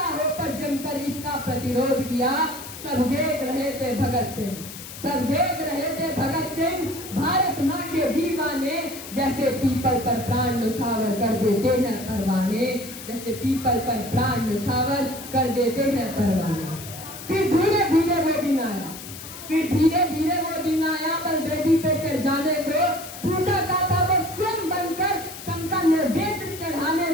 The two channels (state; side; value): noise; left; hiss, 12 dB below the sound